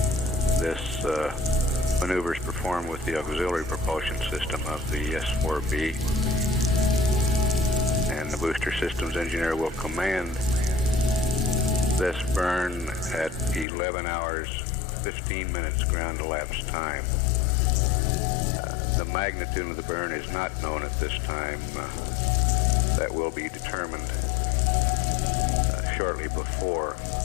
This maneuver is performed with the auxiliary propulsion system of the S-4B. And the booster systems engineer will command this burn at 11 hours 15 minutes ground elapsed time. The magnitude of the burn is not known at this time. That will be determined shortly before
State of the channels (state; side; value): drops out; right; at 13.7 s